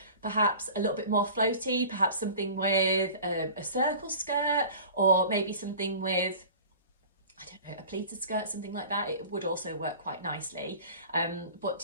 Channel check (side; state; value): both; inverted; correlation -0.41